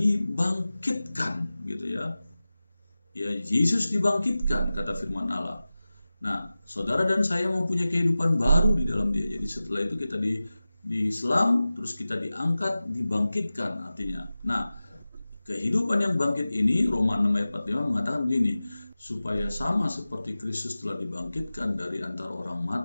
gitu ya. Ya, Yesus dibangkitkan kata firman Allah. Nah, saudara dan saya mempunyai kehidupan baru di dalam dia. Jadi setelah itu kita diselam, terus kita diangkat, dibangkitkan artinya. Nah, Kehidupan yang bangkit ini, Roma 6 ayat 45 mengatakan begini, supaya sama seperti Kristus telah dibangkitkan dari antara orang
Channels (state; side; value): inverted; both; correlation -0.96